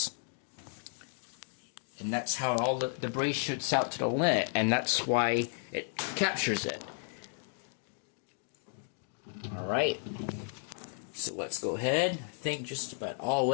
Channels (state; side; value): silent; right; 55 dB below the other